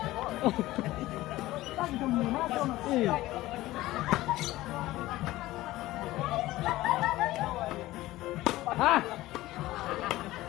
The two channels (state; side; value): quieter; right; 17.1 dB